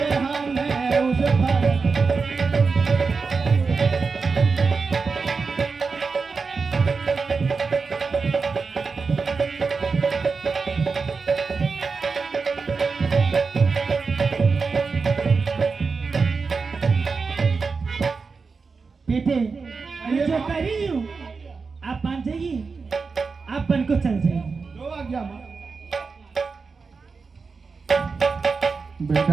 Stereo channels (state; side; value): quieter; left; 4.7 dB